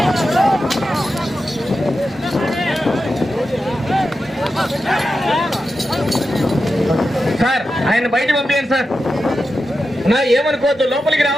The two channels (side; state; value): both; normal; correlation 0.90